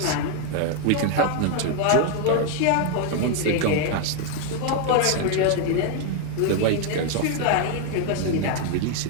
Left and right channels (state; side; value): different; both; correlation 0.01